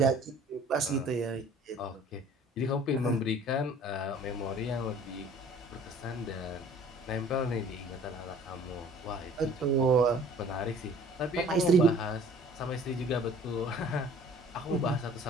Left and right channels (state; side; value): normal; both; correlation 0.51